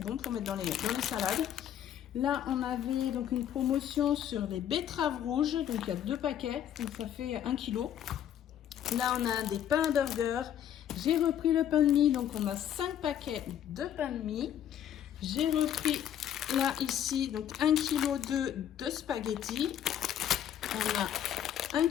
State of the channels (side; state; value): right; quieter; 10.2 dB